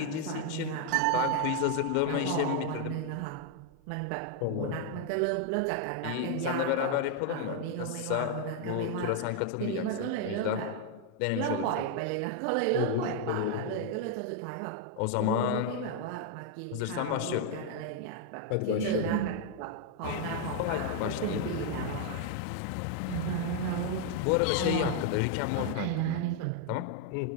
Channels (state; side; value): different; both; correlation 0.00